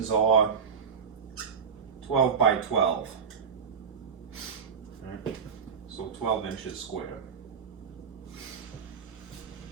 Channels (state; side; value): quieter; left; 6.5 dB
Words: are 12 by 12. Right. So 12 inches square.